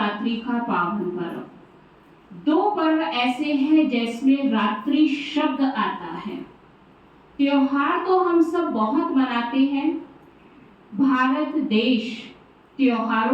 का पावन पर्व। दो पर्व ऐसे हैं जिसमें रात्रि शब्द आता है। त्योहार तो हम सब बहुत मनाते हैं। भारत देश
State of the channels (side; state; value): both; identical; correlation 1.00